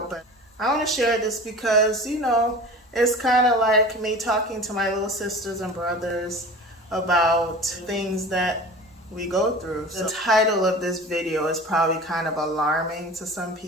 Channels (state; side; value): normal; both; correlation 0.38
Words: but I want to share this because, it's kind of like me talking to my little sisters and brothers about things that we go through. So the title of this video is probably kind of alarming to some